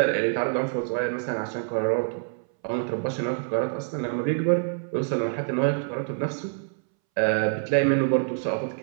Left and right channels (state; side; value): silent; left; 61 dB below the other